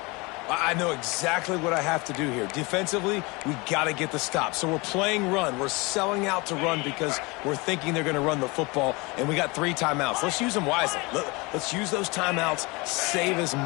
I know exactly what I have to do here. Defensively, we got to get the stop. So we're playing run. We're selling out to run because we're thinking they're going to run the football, and we got 3 timeouts. Let's use them wisely. Let's use those timeouts, save as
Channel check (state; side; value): quieter; right; 26.0 dB